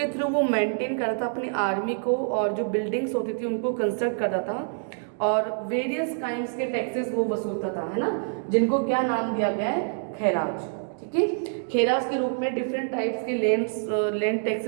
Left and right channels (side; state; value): left; silent; digital silence